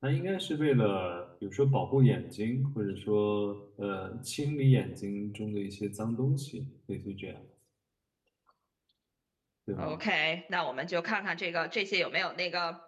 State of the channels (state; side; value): identical; both; correlation 1.00